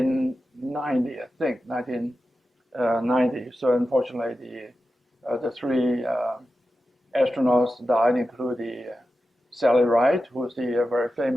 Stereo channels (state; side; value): normal; both; correlation 0.92